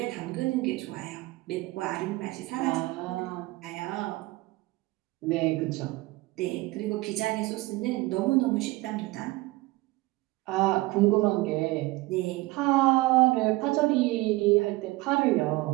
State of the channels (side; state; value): left; quieter; 20.8 dB